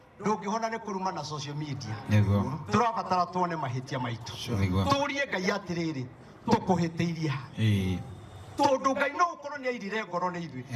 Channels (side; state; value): both; identical; correlation 1.00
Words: ndũngĩhona nĩ kũruma na social media Nĩguo. tũrabatara tuone mahĩtia maitũ Nĩguo. tũrie Ngai atĩrĩrĩ tũkũhĩtĩirie tondũ Ngai no ũkorwo nĩ airire ngoro nĩ ithuĩ